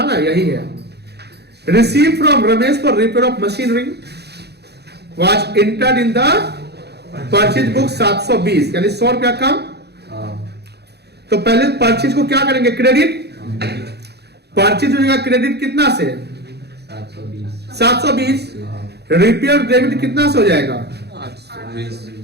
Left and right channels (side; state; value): left; late; 0.48 ms